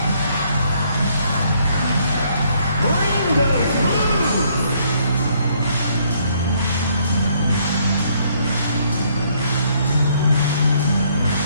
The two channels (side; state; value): both; inverted; correlation -0.68